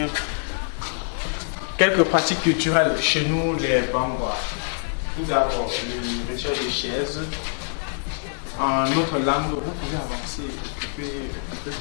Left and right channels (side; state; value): right; silent; 62 dB below the other